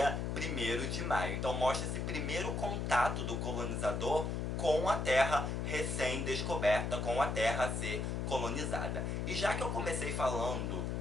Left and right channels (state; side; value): noise; left; hum, 1 dB below the sound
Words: 1º de maio. Então mostra esse primeiro contato do colonizador com a terra recém-descoberta, com a terra a ser colonizada. E já que eu comecei falando